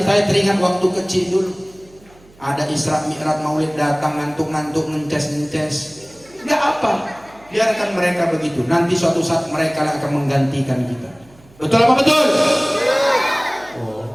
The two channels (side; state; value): right; noise; hum, 27 dB below the sound